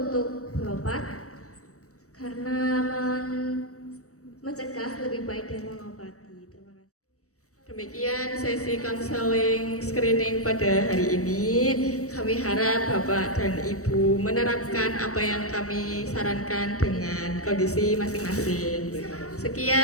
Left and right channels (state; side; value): late; right; 0.65 ms